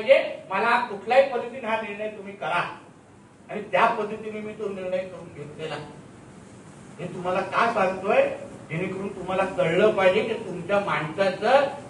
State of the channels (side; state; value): both; identical; correlation 1.00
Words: मला कुठल्याही पद्धतीने हा निर्णय तुम्ही करा. आणि त्या पद्धतीने मी तो निर्णय करून घेतलेला. हे तुम्हाला का सांगतोय, जेणेकरून तुम्हाला कळलं पाहिजे की तुमच्या माणसाचं